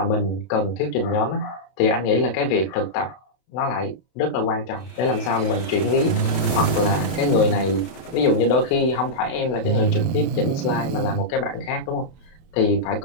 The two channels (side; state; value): right; late; 32 ms